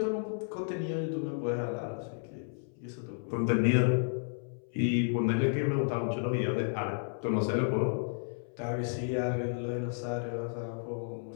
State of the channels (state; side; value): silent; right; 56 dB below the other